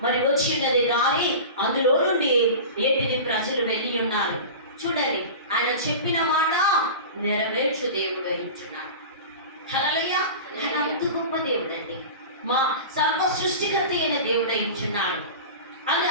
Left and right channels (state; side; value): inverted; both; correlation -0.32